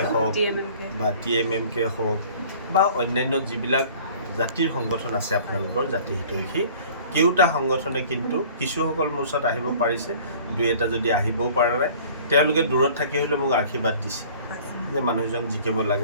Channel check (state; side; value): inverted; both; correlation -0.49